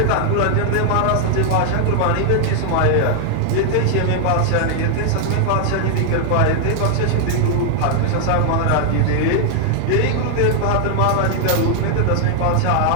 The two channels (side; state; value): both; different; correlation 0.00